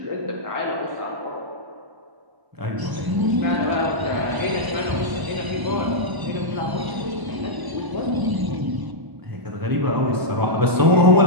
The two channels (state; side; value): late; left; 1.1 ms